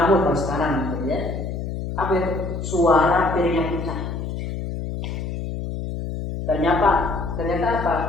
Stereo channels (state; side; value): noise; left; hum, 5 dB below the sound